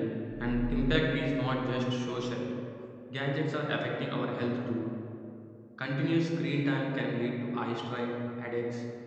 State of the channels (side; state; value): both; identical; correlation 1.00